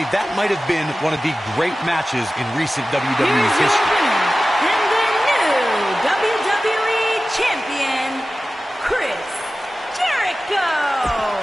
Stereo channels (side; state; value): both; normal; correlation 0.96